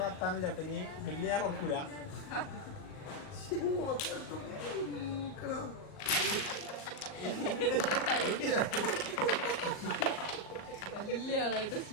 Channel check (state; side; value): late; right; 38 ms